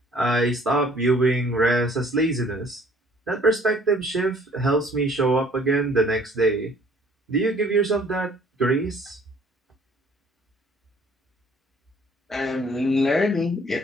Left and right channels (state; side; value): normal; both; correlation 0.57